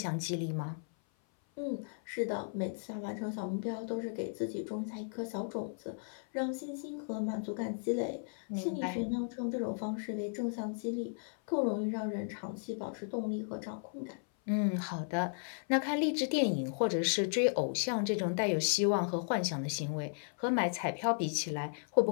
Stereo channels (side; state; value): right; silent; 54 dB below the other